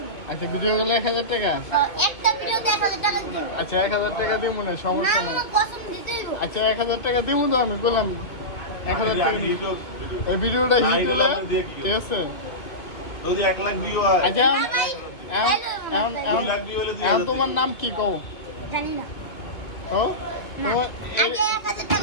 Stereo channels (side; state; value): right; late; 2.1 ms